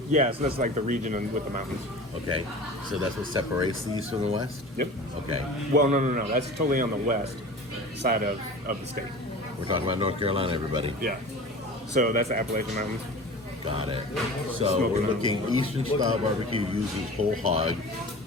Yeah, so that's like the region with the mountains. Okay. So that's what separates these from the West? Yep. Okay. Well, no. That's totally on the west side of the state. We're talking about North Carolina, everybody. Yeah. So that's the Appalachian Mountains. Got it. So we're looking Eastern style barbecue uses whole hog,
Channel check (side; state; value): both; normal; correlation 0.37